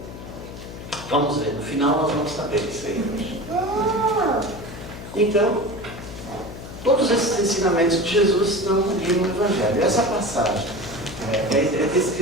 Vamos ver, no final nós vamos saber isso aí hoje. Então, todos esses ensinamentos de Jesus estão ali no Evangelho. Essa passagem é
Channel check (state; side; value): noise; left; hum, 12 dB below the sound